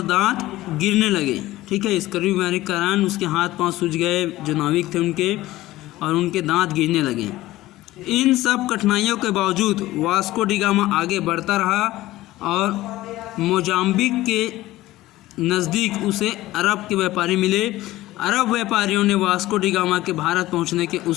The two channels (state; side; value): quieter; right; 16.8 dB